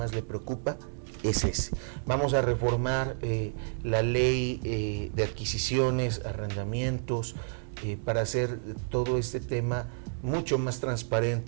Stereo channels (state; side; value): silent; left; digital silence